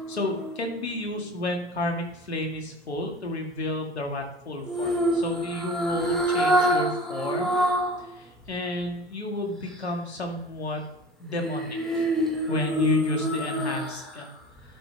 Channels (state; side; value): normal; both; correlation 0.38